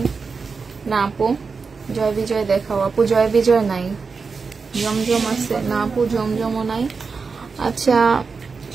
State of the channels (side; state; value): left; quieter; 4.9 dB